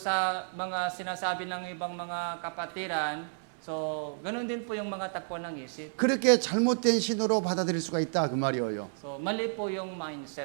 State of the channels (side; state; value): left; silent; digital silence